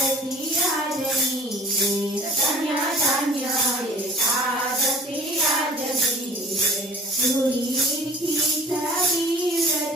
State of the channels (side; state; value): both; normal; correlation 0.46